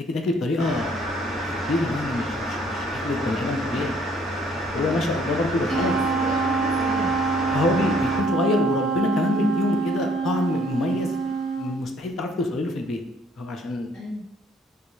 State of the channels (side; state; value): both; normal; correlation 0.62